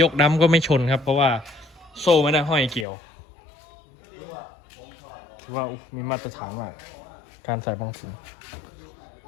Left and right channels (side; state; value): right; drops out; at 2.9 s